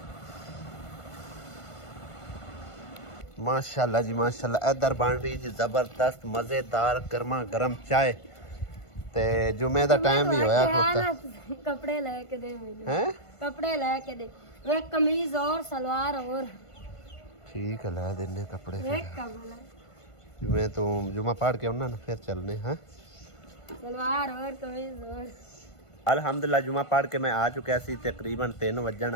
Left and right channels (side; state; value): right; late; 1.5 ms